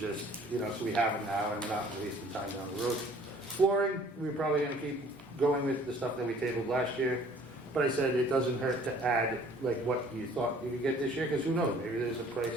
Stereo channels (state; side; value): normal; both; correlation 0.54